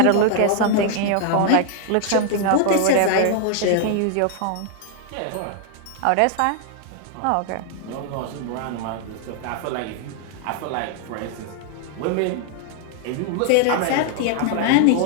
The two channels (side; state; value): both; different; correlation 0.00